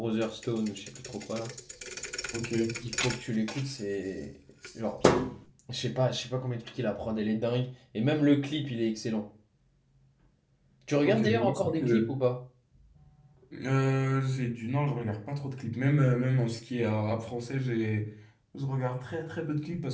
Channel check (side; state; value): both; identical; correlation 1.00